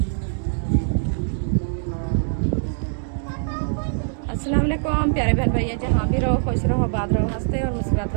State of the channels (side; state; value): left; silent; digital silence